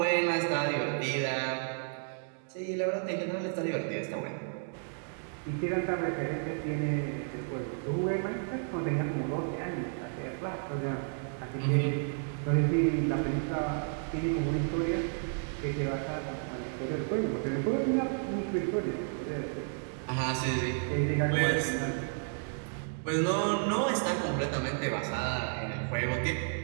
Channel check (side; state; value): left; silent; 56 dB below the other